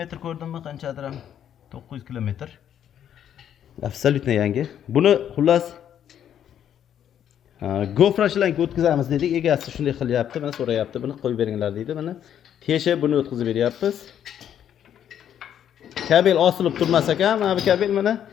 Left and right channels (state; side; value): quieter; right; 9.8 dB